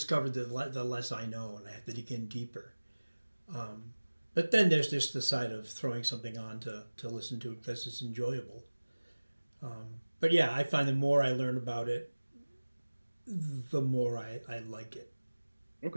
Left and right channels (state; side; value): inverted; both; correlation -1.00